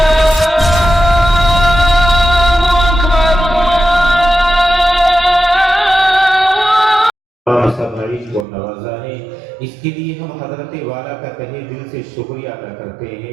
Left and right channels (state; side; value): drops out; left; at 8.5 s